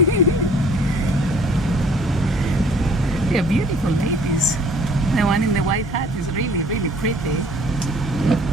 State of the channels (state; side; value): noise; left; hum, 12 dB below the sound